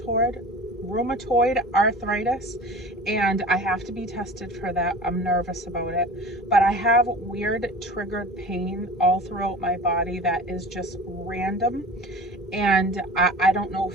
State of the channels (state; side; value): normal; both; correlation 0.38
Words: arthritis, and I have to be tested for that. I'm nervous about it, but I have weird triggered pain all throughout my body that is just random, and I don't know